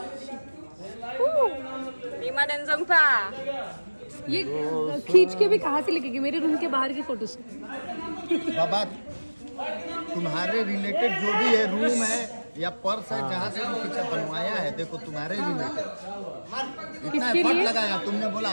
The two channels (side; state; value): both; inverted; correlation -1.00